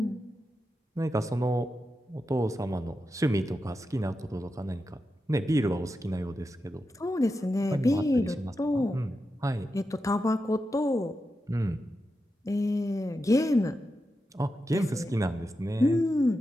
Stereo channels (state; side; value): normal; both; correlation 0.89